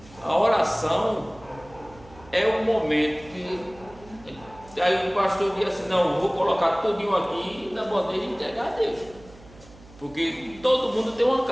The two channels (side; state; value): right; noise; hum, 22 dB below the sound